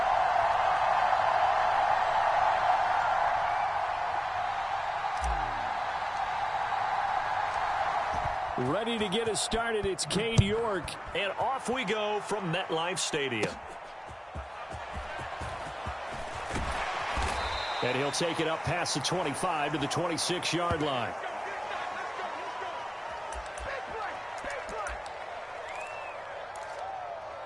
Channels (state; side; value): identical; both; correlation 1.00